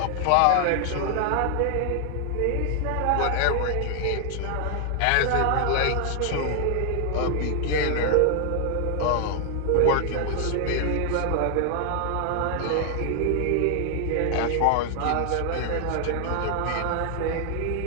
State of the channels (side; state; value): both; different; correlation 0.00